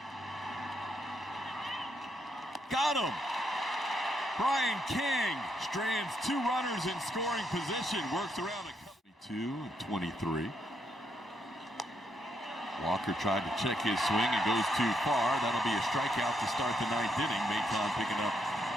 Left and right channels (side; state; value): both; normal; correlation 0.77